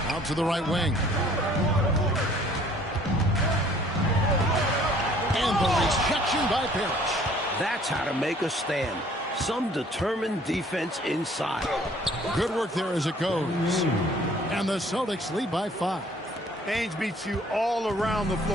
Out to the right wing. And the rejection by Parrish. That's how to make a stand. Some determined defense inside. Good work there as it goes. And the Celtics lead by 5. Ainge beats you all around the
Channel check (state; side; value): normal; both; correlation 0.57